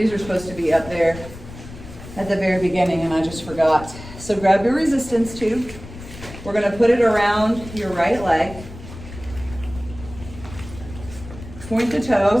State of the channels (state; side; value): noise; left; rumble, 14 dB below the sound